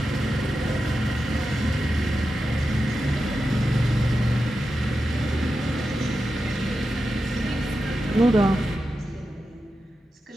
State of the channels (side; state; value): both; normal; correlation 0.90